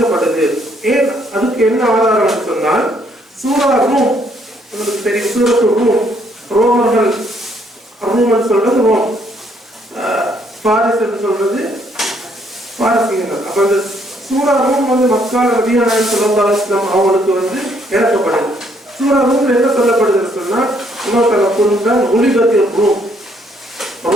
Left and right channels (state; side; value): normal; both; correlation 0.69